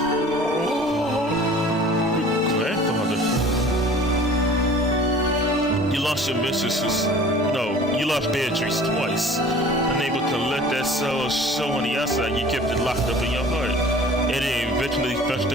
grandfather. You lost your mistresses. No, you lost Beatrice twice. Unable to let that sorrow show on the outside, you kept it locked up in your heart. And it eventually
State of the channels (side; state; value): both; normal; correlation 0.47